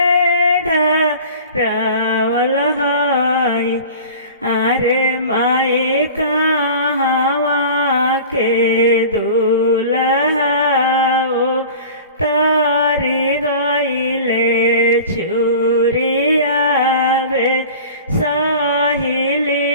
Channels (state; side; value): inverted; both; correlation -0.40